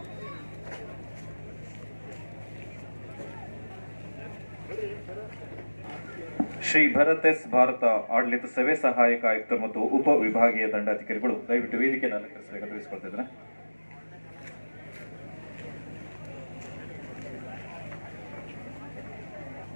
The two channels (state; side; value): inverted; both; correlation -1.00